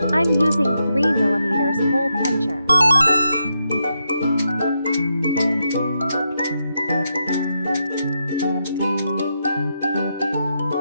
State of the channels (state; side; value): inverted; both; correlation -0.84